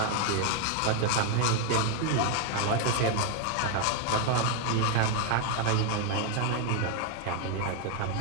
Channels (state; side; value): different; both; correlation 0.00